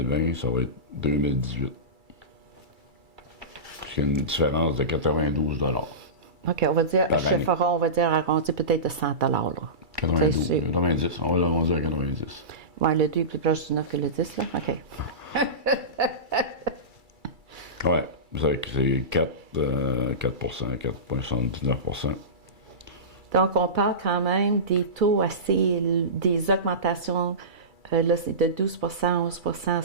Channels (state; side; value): late; left; 2.3 ms